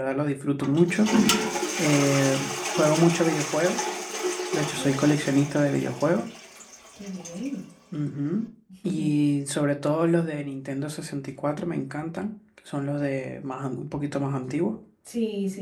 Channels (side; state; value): both; identical; correlation 1.00